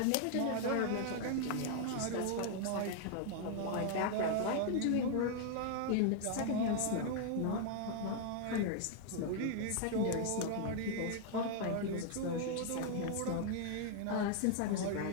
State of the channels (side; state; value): both; different; correlation 0.00